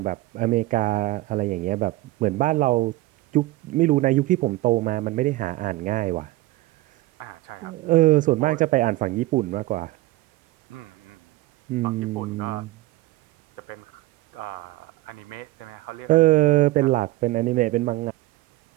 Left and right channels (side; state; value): left; quieter; 18.5 dB